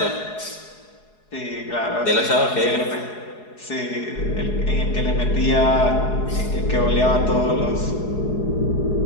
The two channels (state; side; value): late; right; 4.8 ms